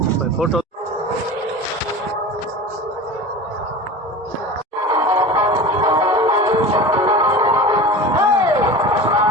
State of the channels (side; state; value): both; normal; correlation 0.33